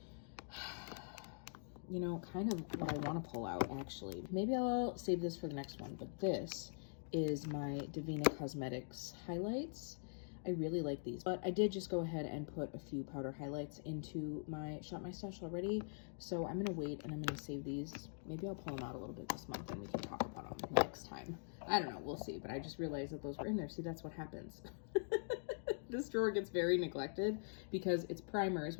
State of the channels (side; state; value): right; silent; digital silence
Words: You know, kind of what I want to pull out, actually. Maybe I'll save this for the next one, but this is my Divina Cosmetics highlights. I really like these, but I did just go ahead and put a few powder highlights into my Shop My Stash already, so I'm gonna wait and I'm gonna save these. Maybe I'll pull them out a little bit this month and we can talk about them next time. I don't know, we'll see, but I just realized that those were in there. See, that's what happens. This drawer gets very neglected because it's primers,